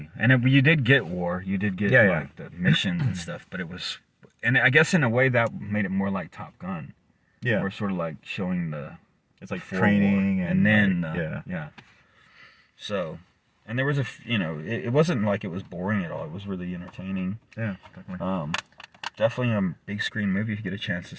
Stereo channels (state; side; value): identical; both; correlation 1.00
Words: and you did get war. You did get like the missions and stuff, but it was, and I guess in a way that made it more like Top Gun. Yeah, or sort of like showing it's like training and then like, So. And there was it wasn't like it was boring at all. It was really entertaining. Yeah, definitely. Definitely a big screen movie if you get a chance to